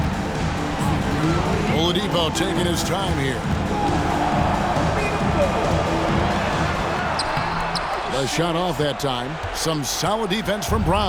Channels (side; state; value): both; identical; correlation 1.00